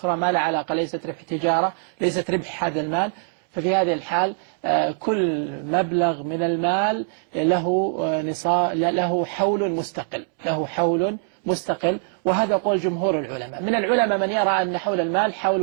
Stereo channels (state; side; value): silent; left; digital silence